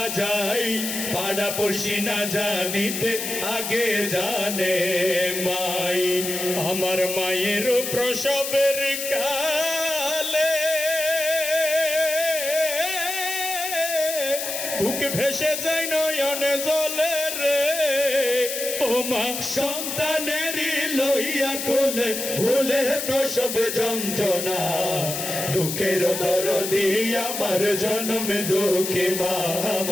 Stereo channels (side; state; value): left; noise; hiss, 4 dB below the sound